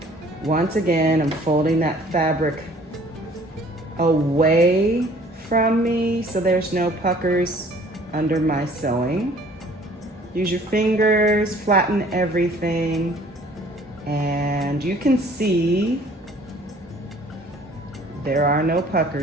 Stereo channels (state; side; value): normal; both; correlation 0.54